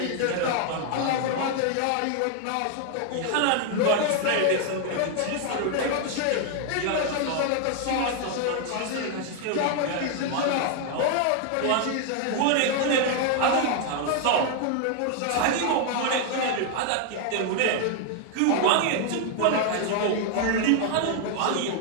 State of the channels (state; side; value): different; both; correlation 0.00